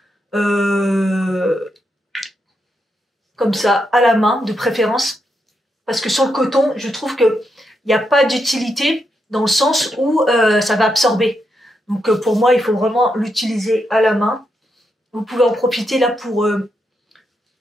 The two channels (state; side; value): normal; both; correlation 0.82